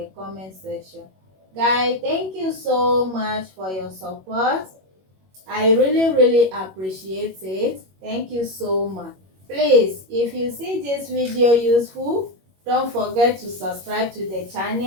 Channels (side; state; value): left; late; 21 ms